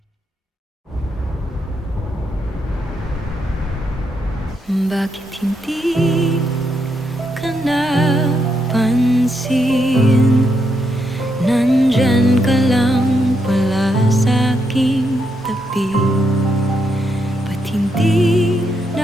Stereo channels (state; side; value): normal; both; correlation 0.80